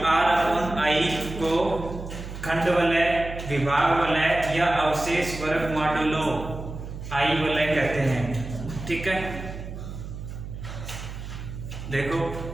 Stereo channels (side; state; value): right; noise; hum, 9 dB below the sound